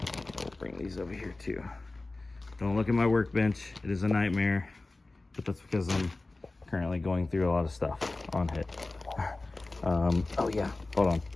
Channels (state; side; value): quieter; right; 3.1 dB